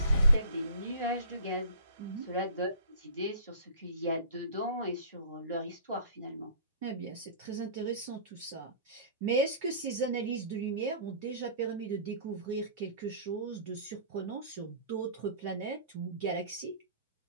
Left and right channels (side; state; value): both; inverted; correlation -0.45